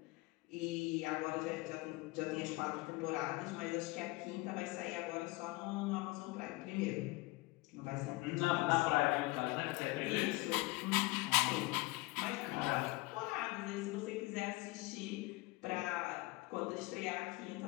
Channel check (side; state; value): right; quieter; 22.3 dB